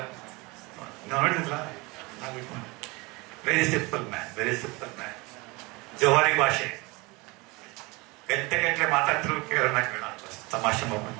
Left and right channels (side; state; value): left; quieter; 25.1 dB